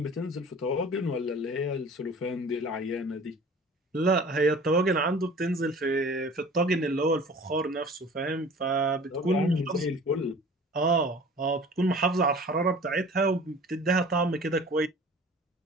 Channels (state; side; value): normal; both; correlation 0.44